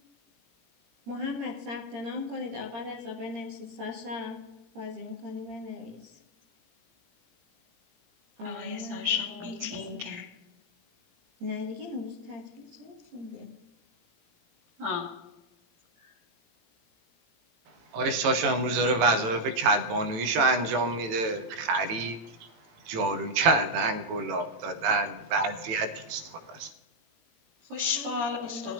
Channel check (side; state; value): left; late; 18 ms